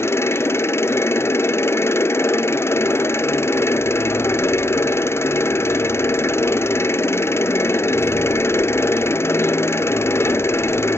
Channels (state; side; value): late; right; 0.12 ms